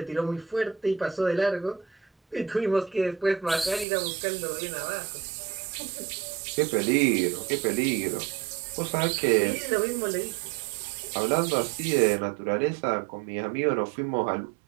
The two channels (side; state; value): left; drops out; at 3.9 s